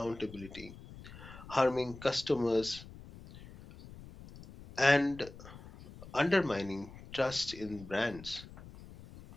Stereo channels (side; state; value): left; noise; rumble, 17 dB below the sound